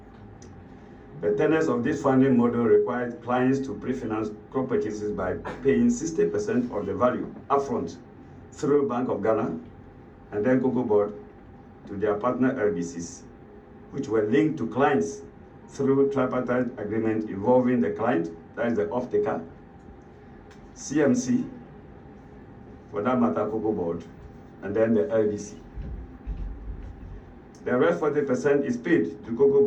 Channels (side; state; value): both; identical; correlation 1.00